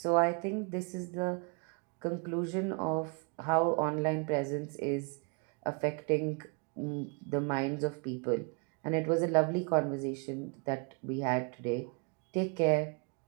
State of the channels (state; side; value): quieter; left; 35.2 dB